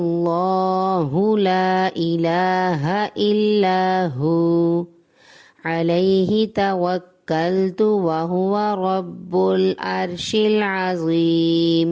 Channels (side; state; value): both; identical; correlation 1.00